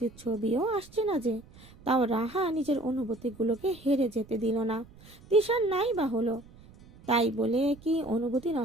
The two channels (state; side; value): noise; right; rumble, 22 dB below the sound